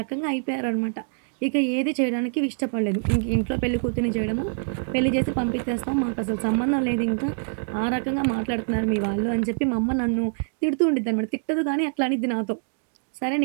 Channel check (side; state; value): left; silent; digital silence